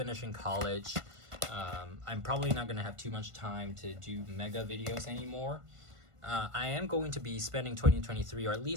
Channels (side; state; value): left; late; 1.5 ms